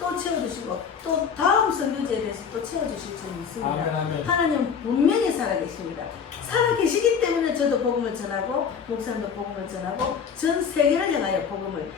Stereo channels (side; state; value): right; quieter; 6.8 dB